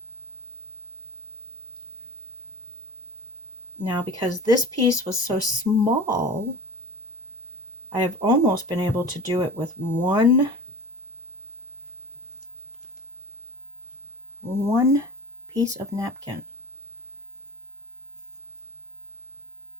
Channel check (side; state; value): both; normal; correlation 0.39